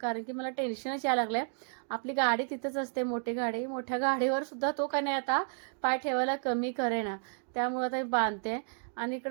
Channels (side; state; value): left; silent; 56 dB below the other